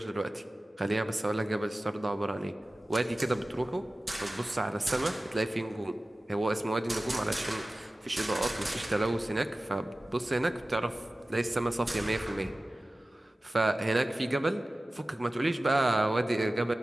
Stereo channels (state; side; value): normal; both; correlation 0.97